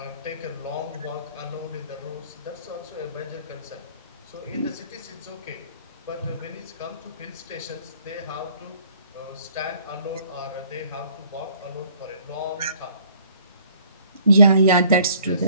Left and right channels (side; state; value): both; inverted; correlation -0.59